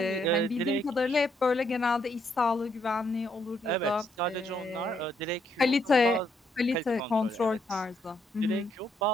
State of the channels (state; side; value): normal; both; correlation 0.73